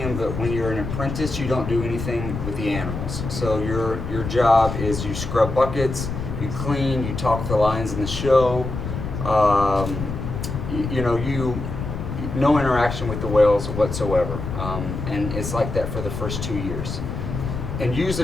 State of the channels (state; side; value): noise; left; rumble, 5 dB below the sound